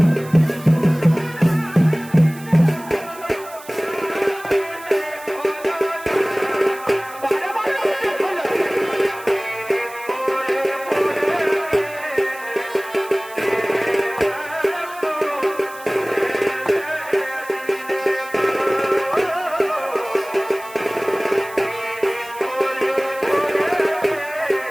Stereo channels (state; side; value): noise; right; hiss, 19 dB below the sound